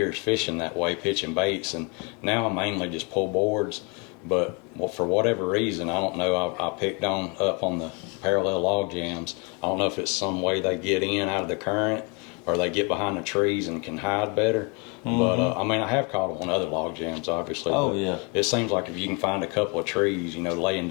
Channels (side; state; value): right; quieter; 32.5 dB